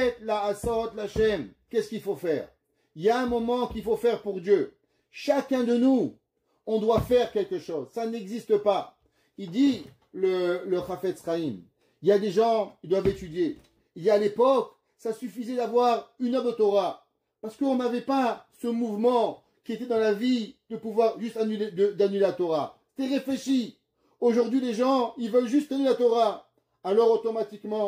la asot l'Hashem, qu'est-ce qu'il faut faire? Il y a un moment qu'il faut faire pour Dieu. Chacun de nous, on doit faire quelque chose. Ça n'existe pas. Il dit, le Chafetz Chaim, il y a des gens, ils doivent étudier. Il y a à l'époque, ça suffisait d'avoir une œuvre de Torah. Parce qu'on n'avait pas ce mouvement qui était dans la vie de pouvoir juste d'annuler la Torah. C'était réfléchi. Aujourd'hui, les gens, ils veulent juste annuler la Torah. Alors,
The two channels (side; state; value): both; identical; correlation 1.00